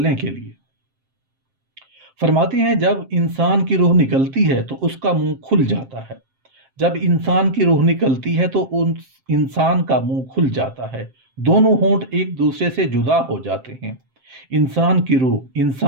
کے لیے۔ فرماتے ہیں جب انسان کی روح نکلتی ہے تو اس کا منہ کھل جاتا ہے، جب انسان کی روح نکلتی ہے تو انسان کا منہ کھل جاتا ہے، دونوں ہونٹ ایک دوسرے سے جدا ہو جاتے ہیں۔ انسان کی روح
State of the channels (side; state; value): left; late; 7.6 ms